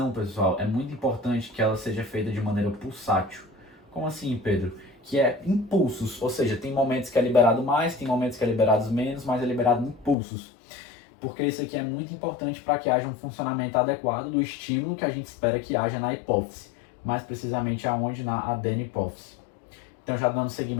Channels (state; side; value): drops out; right; at 10.2 s